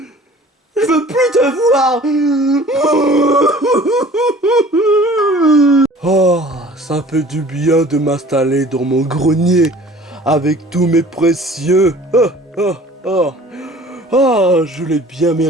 Je veux plus te voir. Oh, ça fait du bien de m'installer dans mon grenier avec tous mes précieux. Je l'ai bien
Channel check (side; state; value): both; normal; correlation 0.48